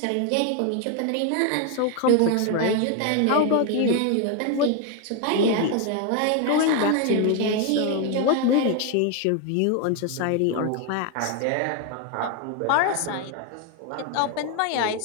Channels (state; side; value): different; both; correlation 0.01